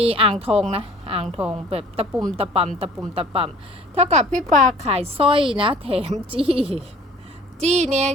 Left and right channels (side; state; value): both; normal; correlation 0.50